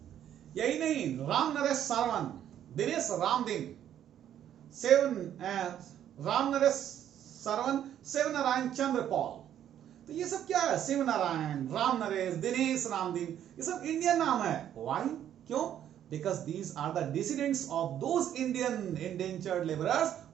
यही नहीं, राम नरेश सरवन, दिनेश रामदीन, राम नरेश सरवन, शिवनारायण चंद्र पॉल। तो ये सब क्या है, शिवनारायण, राम नरेश, दिनेश रामदीन, ये सब इंडियन नाम है। व्हाई, क्यों? Because these are the descendants of those Indian indentured laborers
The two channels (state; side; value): quieter; left; 10.5 dB